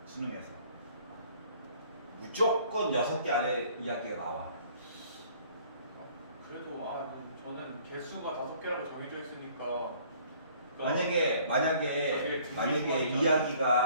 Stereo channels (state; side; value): inverted; both; correlation -0.57